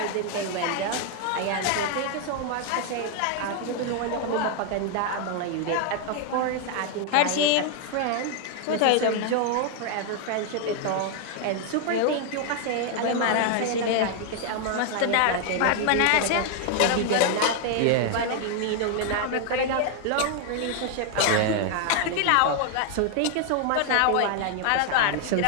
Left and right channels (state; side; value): different; both; correlation 0.00